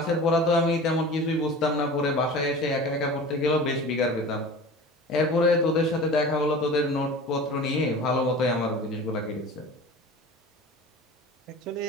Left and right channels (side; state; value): both; normal; correlation 0.37